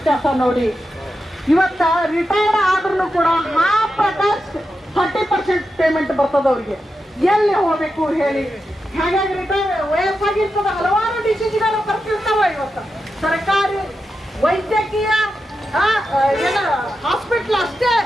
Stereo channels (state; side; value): normal; both; correlation 0.88